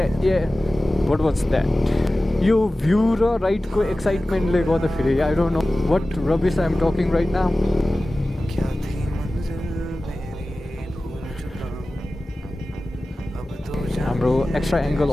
व्हाट वाज दैट यो भ्यू र राइडको एक्साइटमेन्टले गर्दाखेरि I don't know what rubbish I am talking right now हाम्रो एक्स्ट्रा एङ्गल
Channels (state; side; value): normal; both; correlation 0.96